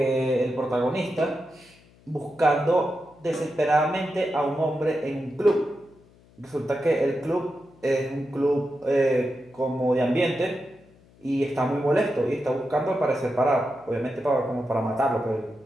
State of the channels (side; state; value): left; noise; hum, 28 dB below the sound